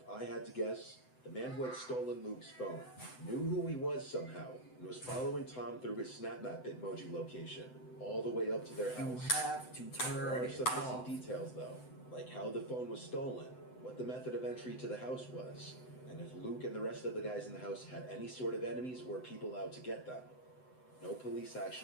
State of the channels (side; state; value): right; late; 7.9 ms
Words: I had to guess, the man who had stolen Luke's phone knew who he was somehow and was following Tom through his SnapMap Bitmoji location. all the way up to their You house. have to There turn are it some off. missing details, though, like how the phone was stolen, what the method of entry to the house was, and if Luke and the rest of the guys in the house had any sort of enemies or people out to get them. No police